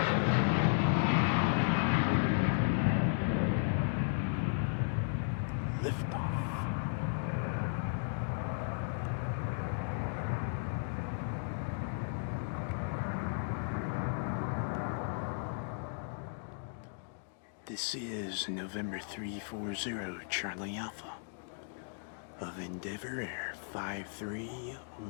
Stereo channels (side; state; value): right; silent; digital silence